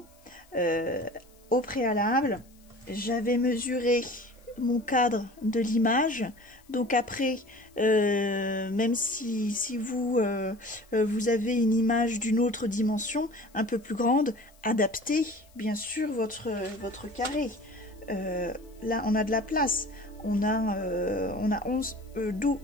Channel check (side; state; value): left; noise; hiss, 30 dB below the sound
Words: au préalable, j'avais mesuré mon cadre de l'image. Donc après, même si vous, vous avez une image d'une autre dimension, un peu plus grande, adaptez bien sûr votre carré. Là, on a de la place. On a